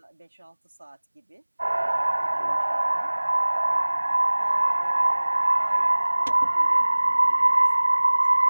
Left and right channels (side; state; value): both; inverted; correlation -1.00